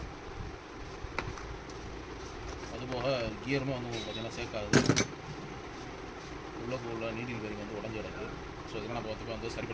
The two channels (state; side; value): identical; both; correlation 1.00